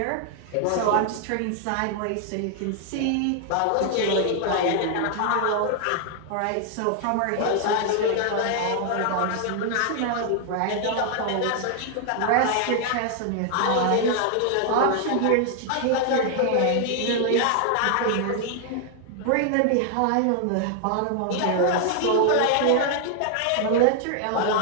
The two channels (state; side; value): different; both; correlation 0.00